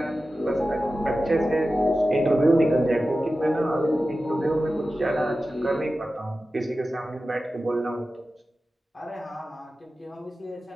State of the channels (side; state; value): both; normal; correlation 0.94